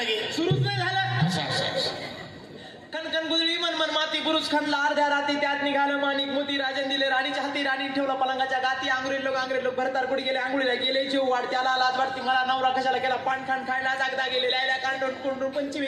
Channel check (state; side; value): identical; both; correlation 1.00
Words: सुरूच नाही झालं. असं कणकण गुदळी मन मन माती बुरुज खणला अर्ध्या राती त्यात निघालं माणिक मोती राजन दिले राणीच्या हाती राणी ठेवला पलंगाच्या गाती आंग्रेज लोक भरतार कुठे गेले आंघोळीला गेले जीव वाढ त्याला लाज वाटती मला नवरा कशाला केला पान खाण खायला जागदा गेले लायला कांडून कुंडून पंचमी